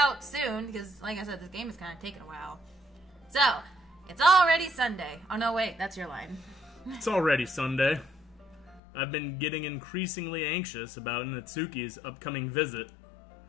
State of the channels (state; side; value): drops out; right; at 8.8 s